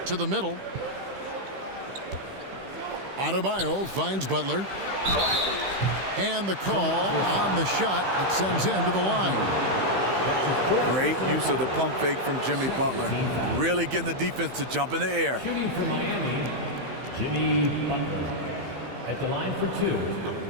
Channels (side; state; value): left; late; 15 ms